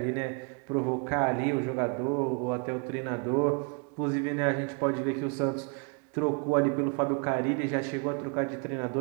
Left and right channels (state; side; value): quieter; left; 36.1 dB